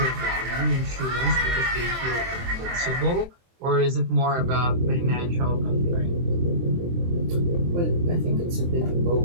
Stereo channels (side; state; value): left; late; 23 ms